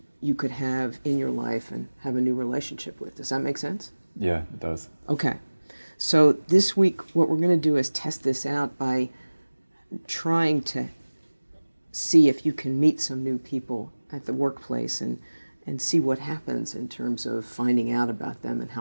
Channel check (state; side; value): inverted; both; correlation -1.00